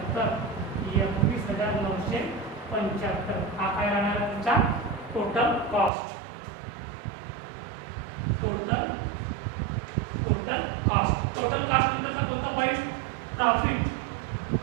21,975 हा काय राहणार तुमचा टोटल कॉस्ट. टोटल कॉस्ट नंतरचा कोणता पॉईंट? प्रॉफिट.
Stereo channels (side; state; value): left; drops out; at 5.9 s